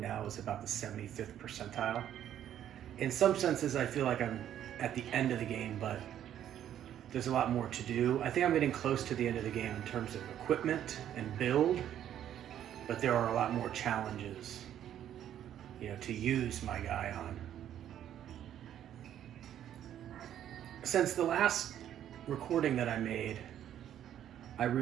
is about the 75th percentile. In some senses, I feel like I'm at the end of the game, but there's a lot more to do. I think I'm getting close to the end of the game in terms of equipment and build, but there are a lot more challenges, to use my guy on. Since the last recording that I made, I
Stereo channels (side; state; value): left; quieter; 10.7 dB